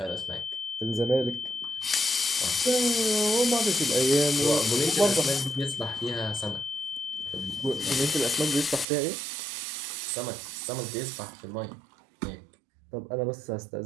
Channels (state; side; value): drops out; left; at 8.8 s